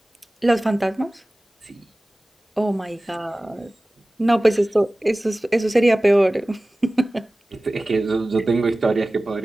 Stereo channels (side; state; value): both; normal; correlation 0.97